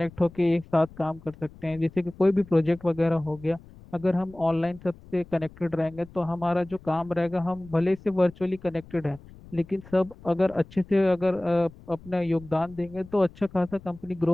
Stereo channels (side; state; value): left; noise; rumble, 21 dB below the sound